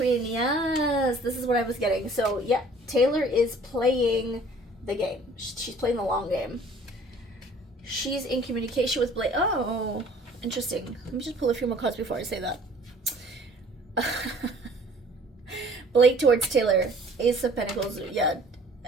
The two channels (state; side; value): normal; both; correlation 0.53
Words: Yes, this is what I was getting. So yeah, Taylor is playing the game. She's playing the long game. She's in communication with Blake. Oh, interesting. Let me just pull a few more cards before I say that. Blake towards Taylor. Ace of Pentacles. Yeah.